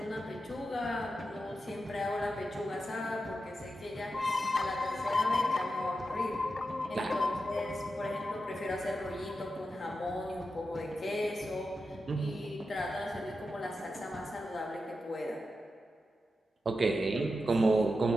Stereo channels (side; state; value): both; normal; correlation 0.89